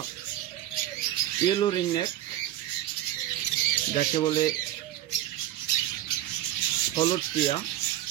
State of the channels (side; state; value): left; quieter; 13.3 dB